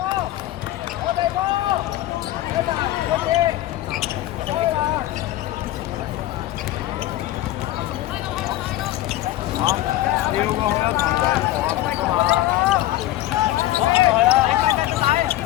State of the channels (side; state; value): right; quieter; 15.1 dB